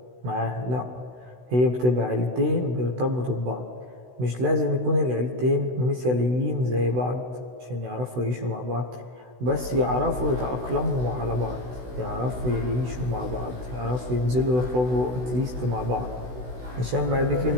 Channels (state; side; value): late; left; 16 ms